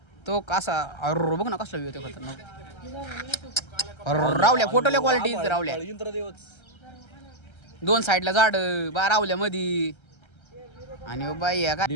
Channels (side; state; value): right; late; 1.3 ms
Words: तो कसा अरे बघ ना कसला व्ह्यू होतो खतरनाक. रावल्या फोटोल्या क्वालिटी रावल्या. दोन साईडला झाड बा रावल्या मधी. आणि बाई का